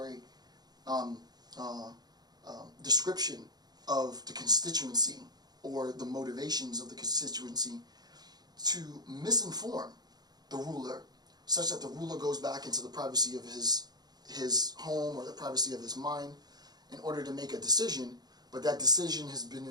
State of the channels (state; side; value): late; left; 0.19 ms